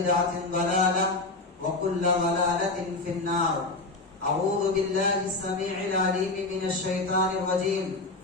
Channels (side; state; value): right; quieter; 3.3 dB